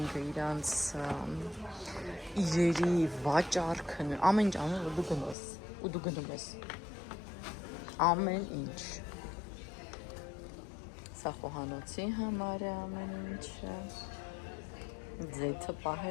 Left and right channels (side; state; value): right; drops out; at 5.4 s